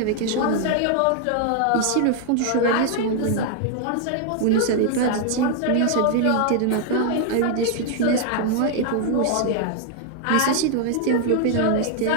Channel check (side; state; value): both; different; correlation 0.00